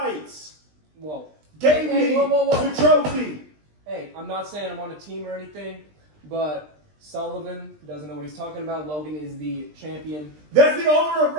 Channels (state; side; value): late; left; 20 ms